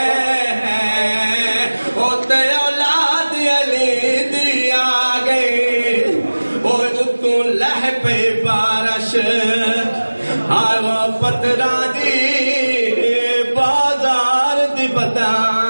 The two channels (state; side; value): inverted; both; correlation -1.00